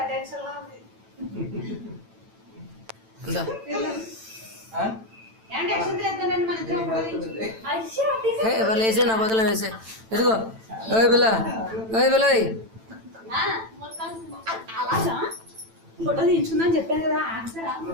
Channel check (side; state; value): left; late; 9.0 ms